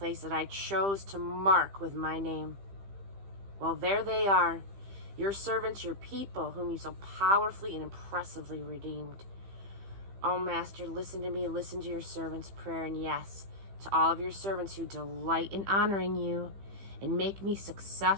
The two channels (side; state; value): left; late; 15 ms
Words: that I chose to mark with my name. Well, there they are, your servants, your people, whom you so powerfully and impressively redeemed. Oh, Master, listen to me, listen to your servant's prayer, and yes, to all of your servants who delight in honoring you, and make me